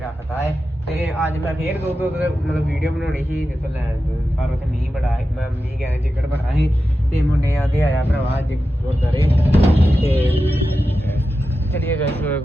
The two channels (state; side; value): normal; both; correlation 0.91